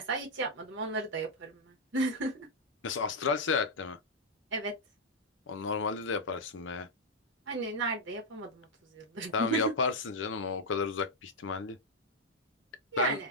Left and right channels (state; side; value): normal; both; correlation -0.02